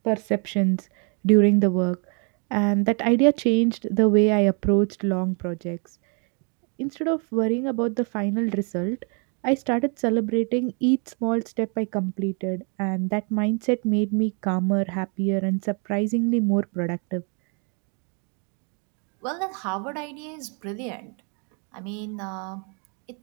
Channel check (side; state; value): left; quieter; 37.5 dB